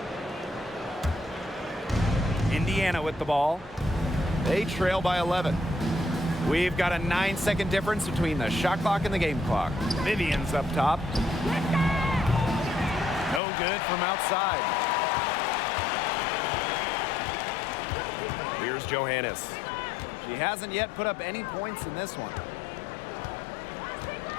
Indiana with the ball. They trail by 11. We've got a 9-second difference between the shot clock and the game clock. Vivian's up top. No good from outside. Here's Johannes. She hasn't yet put up any points in this one.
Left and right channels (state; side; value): drops out; right; at 13.4 s